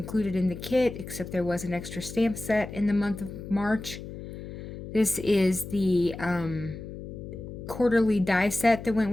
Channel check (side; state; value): left; noise; hum, 10 dB below the sound